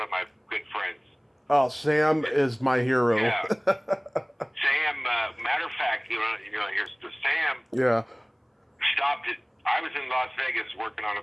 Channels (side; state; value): both; identical; correlation 1.00